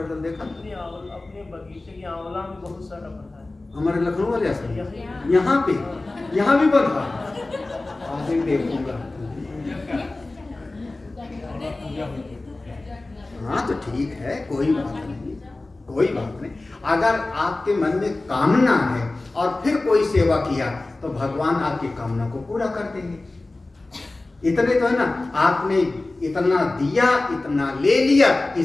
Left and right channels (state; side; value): quieter; right; 3.0 dB